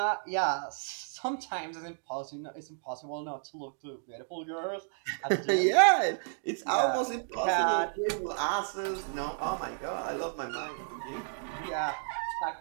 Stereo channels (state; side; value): silent; left; digital silence